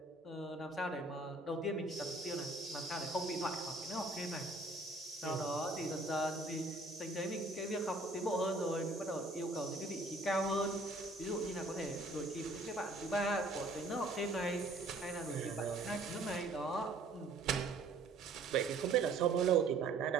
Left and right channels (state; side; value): quieter; left; 3.0 dB